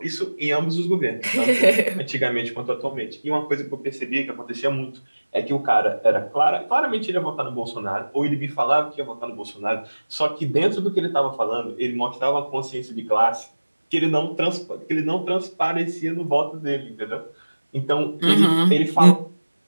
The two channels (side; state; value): both; inverted; correlation -1.00